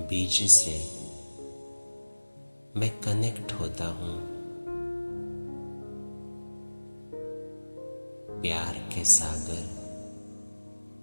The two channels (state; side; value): inverted; both; correlation -1.00